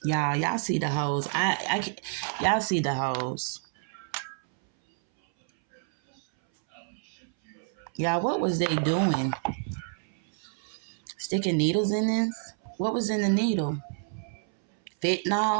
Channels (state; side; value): silent; left; 59 dB below the other